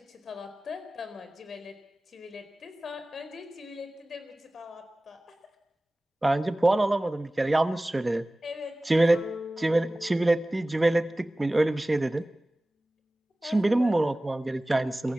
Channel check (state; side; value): normal; both; correlation 0.98